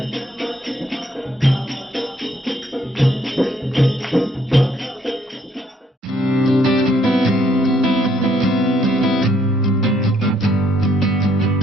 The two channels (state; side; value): normal; both; correlation 0.68